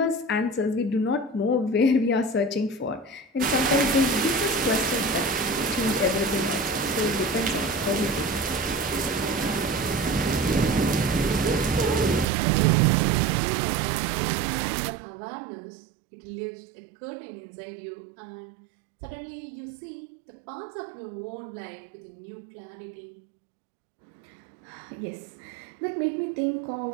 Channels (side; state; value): left; drops out; at 12.2 s